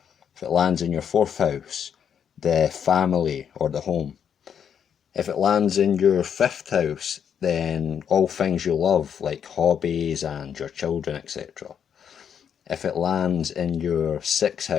If it lands in your fourth house, the family or the home. If it lands in your fifth house, then all things you love, like hobbies and your children, etc. If it lands in your sixth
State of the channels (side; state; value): right; quieter; 8.1 dB